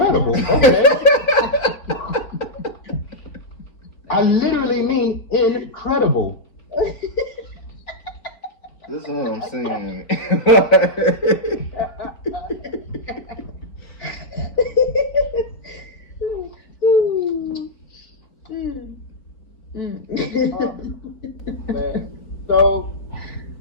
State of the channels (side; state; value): right; late; 3.9 ms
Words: Okay. I literally mean incredible. This is what I'm saying. Man. So